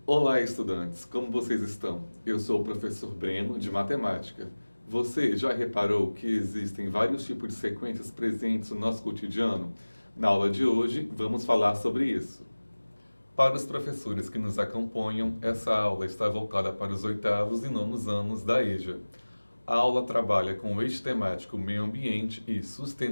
Olá, estudantes! Como vocês estão? Eu sou o professor Breno, de Matemática. Você já reparou que existem vários tipos de sequências presentes no nosso cotidiano? Na aula de hoje, vamos falar sobre isso. Para os professores que nos acompanham, essa aula está voltada para os 8º e 9º anos da EJA. A aula trabalha com o eixo temático meio ambiente e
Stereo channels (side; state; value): both; inverted; correlation -1.00